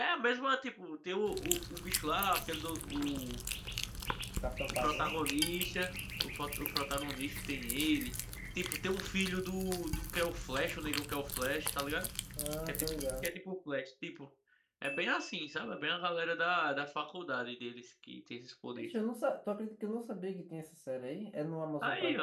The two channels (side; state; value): both; identical; correlation 1.00